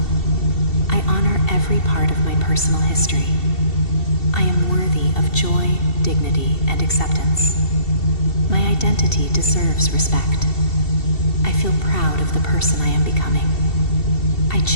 I honor every part of my personal history. I am worthy of joy, dignity, and acceptance. My identity deserves respect. I feel proud of the person I am becoming. I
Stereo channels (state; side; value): late; right; 2.7 ms